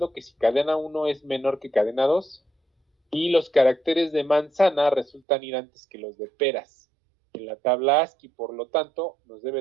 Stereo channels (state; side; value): drops out; left; at 5.2 s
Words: que si cadena 1 es menor que cadena 2 y los caracteres de manzana resultan ir antes que los de peras en la tabla ASCII, por lo tanto nos